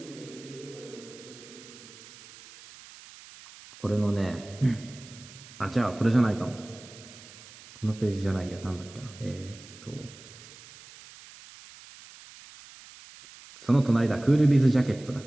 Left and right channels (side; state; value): right; noise; hiss, 19 dB below the sound